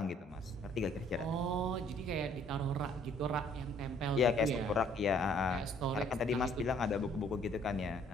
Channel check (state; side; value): normal; both; correlation 0.61